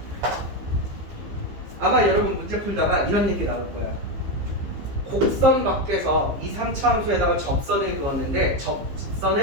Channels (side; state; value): left; late; 15 ms